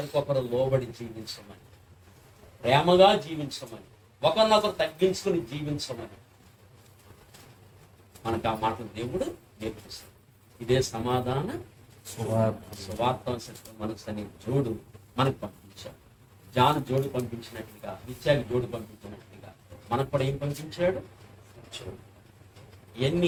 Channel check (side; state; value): both; identical; correlation 1.00